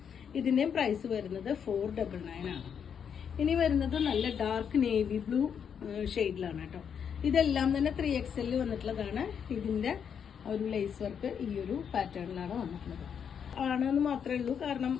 ഇതിന്റെ പ്രൈസ് വരുന്നത് 499 ആണ്. ഇനി വരുന്നത് നല്ല ഡാർക്ക് നേവി ബ്ലൂ ഷെയ്ഡിലാണ് കേട്ടോ. ഇതെല്ലാം തന്നെ 3XL വന്നിട്ടുള്ളതാണ്. ഇതിന്റെ ഒരു ലേസ് വർക്ക് ഈ ഒരു പാറ്റേണിലാണ് വന്നിട്ടുള്ളത്. ആണെന്ന് മാത്രമേ ഉള്ളൂ, കാരണം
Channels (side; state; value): right; quieter; 7.6 dB